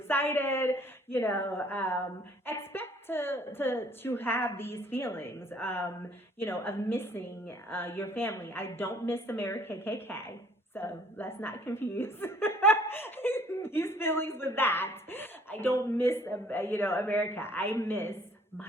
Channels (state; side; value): normal; both; correlation 0.58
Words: Expect to have these feelings, of missing your family. I don't miss America KKK, so let's not confuse these feelings with that. I don't miss, America. I miss